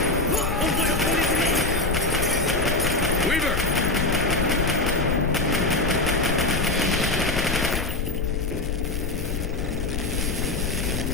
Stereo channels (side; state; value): left; noise; rumble, 3 dB below the sound